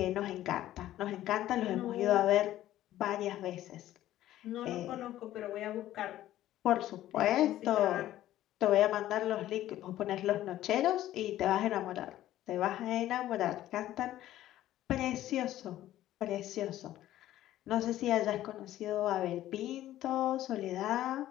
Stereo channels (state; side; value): quieter; right; 13.7 dB